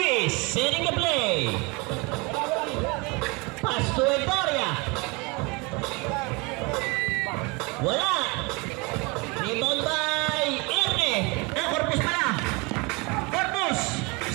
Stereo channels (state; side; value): quieter; left; 27.7 dB